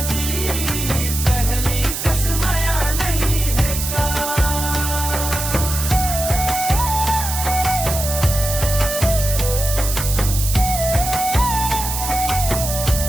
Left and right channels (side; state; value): right; noise; hiss, 4 dB below the sound